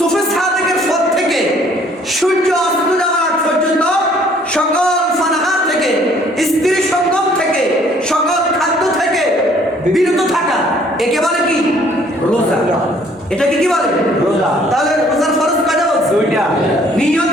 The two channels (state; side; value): normal; both; correlation 0.60